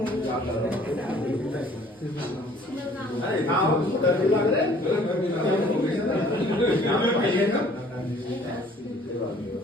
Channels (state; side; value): normal; both; correlation 0.55